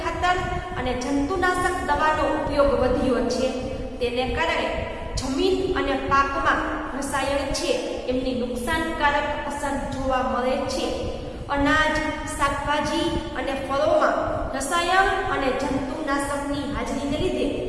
ખાતર અને જંતુનાશક દવાનો ઉપયોગ વધ્યો છે. તેને કારણે જમીન અને પાકમાં રસાયણ છે એમની નુકસાનકારક અસર જોવા મળે છે. અનાજ, શાકભાજી અને ફળોમાં રસાયણ અને જંતુનાશકની હાજરીને લીધે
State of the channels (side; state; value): both; identical; correlation 1.00